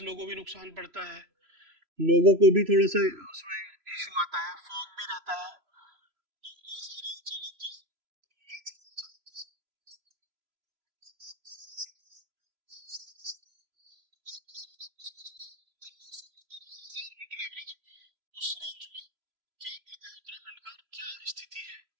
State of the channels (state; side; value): late; left; 3.0 ms